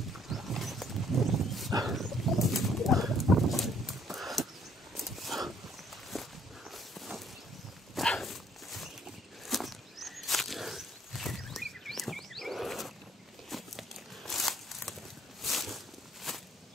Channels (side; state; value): both; normal; correlation 0.64